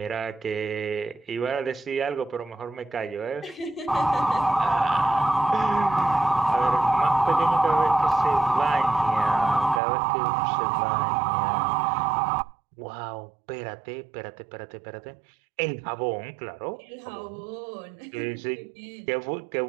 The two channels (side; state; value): left; drops out; at 9.8 s